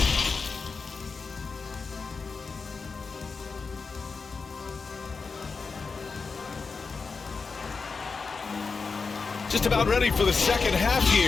Just about ready for the second half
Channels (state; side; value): quieter; right; 4.7 dB